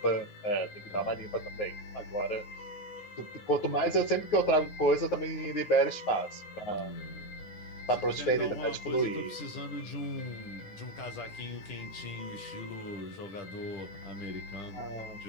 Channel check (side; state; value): right; late; 9.5 ms